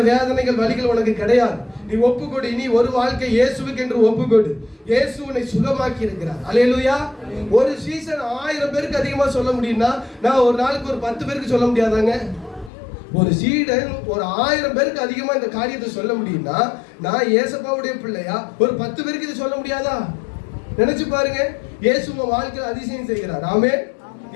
வேதனைகள், வலிகள் உனக்கு கிடையாது. நீ ஒப்புக்கொடு. இனி ஒரு வாழ்க்கை இயேசுவுக்கு என்று ஒப்புக்கொடு. இயேசு உன்னை சுகமாக்கி இருக்கிறார். அல்லேலூயா. ஒரு சீசன் 1000 பேருக்கு அதிகமா சொல்ல முடியும்னா, நான் ஒரு நாளுக்கு ஒரு 10 பேருக்கு சொல்ல முடியாதாங்க? ஒரு சீடன் ஒரு 1000 பேருக்கு அதிகமா இந்த காரியத்தை சொல்ல முடியும்னா, நான் ஏசப்பாவுடைய பிள்ளையா ஒரு 10 பேருக்கு இதை சொல்ல முடியாதா? நினைச்சு பாருங்க. இயேசு உன் வாழ்க்கையில் அதிசயம் செய்கிறார். ஆமென்.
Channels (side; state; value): right; drops out; at 12.7 s